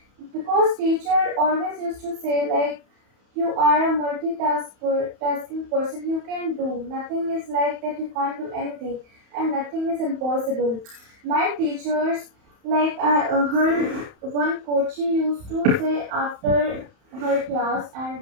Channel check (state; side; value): late; left; 31 ms